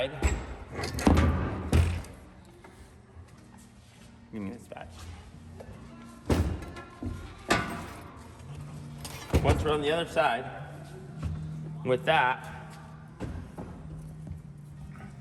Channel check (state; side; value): identical; both; correlation 1.00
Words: give me this back. Once we're on the other side, with that,